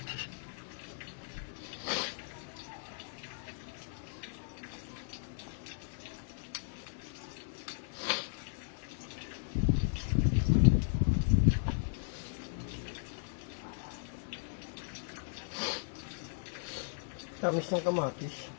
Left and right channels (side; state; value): right; silent; 53 dB below the other